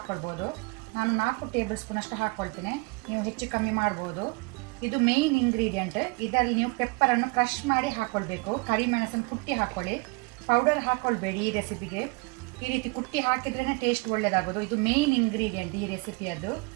ನಾನು 4 ಟೇಬಲ್ ಸ್ಪೂನ್ ಅಷ್ಟು ಹಾಕ್ಕೊಳ್ತೇನೆ. ನೀವು ಹೆಚ್ಚು ಕಮ್ಮಿ ಮಾಡ್ಬೋದು. ಇದು ಮೇಯ್ನ್ ಇಂಗ್ರೀಡಿಯೆಂಟ್. ಇದರಲ್ಲಿ ನೀವು ಪೆಪ್ಪರನ್ನು ಕ್ರಷ್ ಮಾಡಿ ಹಾಕ್ಕೊಳ್ಬೇಕು. ಕರಿಮೆಣಸನ್ನು ಕುಟ್ಟಿ ಹಾಕ್ಕೊಳ್ಳಿ, ಪೌಡರ್ ಹಾಕ್ಕೊಳ್ಬೇಡಿ ಈ ರೆಸಿಪಿಗೆ. ಈ ರೀತಿ ಕುಟ್ಟಿ ಹಾಕಿದ್ರೇ ಟೇಸ್ಟ್ ಒಳ್ಳೆಯದಾಗೋದು. ಇದು ಮೇಯ್ನ್ ಇಂಗ್ರೀಡಿಯೆಂಟ್ ಈ ರೆಸಿಪಿಯದ್ದು.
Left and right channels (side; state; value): left; quieter; 28.8 dB